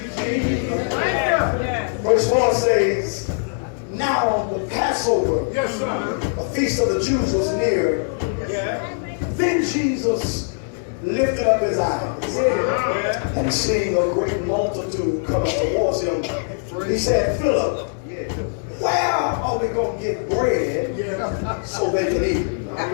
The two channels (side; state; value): right; silent; digital silence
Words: Verse 4 says, now the Passover, a feast of the Jews, was near. Then Jesus lifted up his eyes and seeing a great multitude coming towards him, he said, Philip, where are we going to get bread so they can eat?